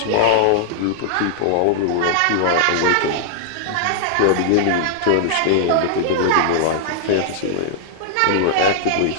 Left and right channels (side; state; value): both; different; correlation 0.00